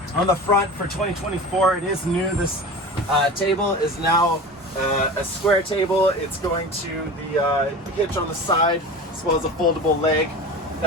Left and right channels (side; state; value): both; normal; correlation 0.33